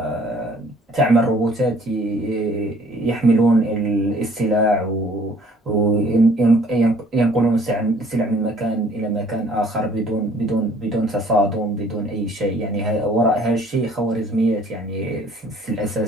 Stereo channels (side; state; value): both; normal; correlation 0.56